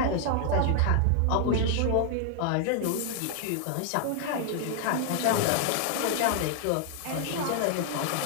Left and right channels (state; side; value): different; both; correlation 0.00